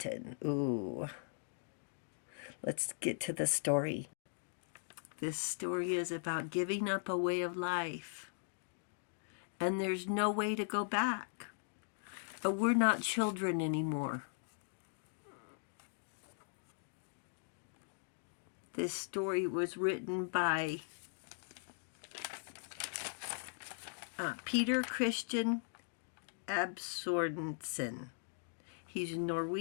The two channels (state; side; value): silent; right; digital silence